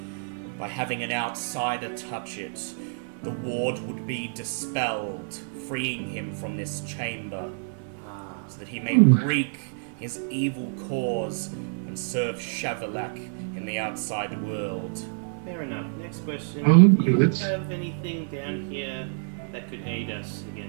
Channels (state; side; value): silent; left; 59 dB below the other